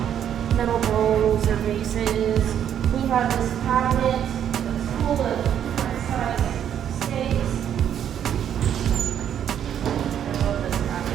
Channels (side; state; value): left; quieter; 9.5 dB